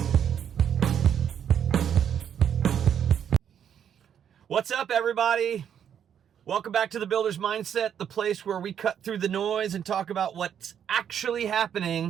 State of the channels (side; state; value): left; quieter; 8.8 dB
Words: What's up, everybody? Welcome back to The Builder's Mindset, the place where we cut through the noise and talk about what's actually